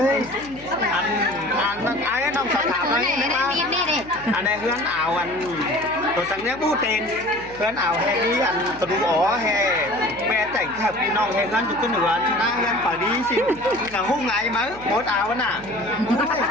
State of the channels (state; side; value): noise; left; hum, 20 dB below the sound